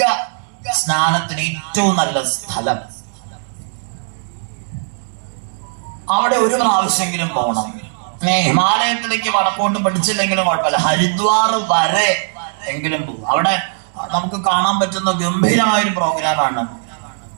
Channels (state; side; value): silent; left; 64 dB below the other